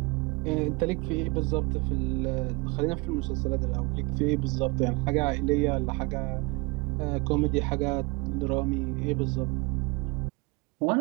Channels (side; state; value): left; quieter; 27.1 dB